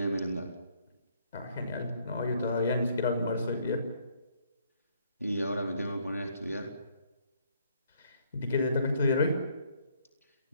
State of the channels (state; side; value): inverted; both; correlation -0.67